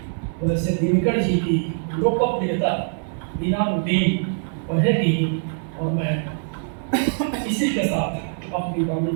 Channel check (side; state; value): left; silent; 63 dB below the other